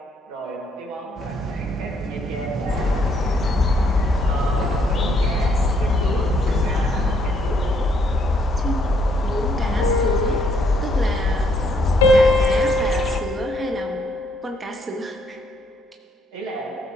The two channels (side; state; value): both; normal; correlation 0.70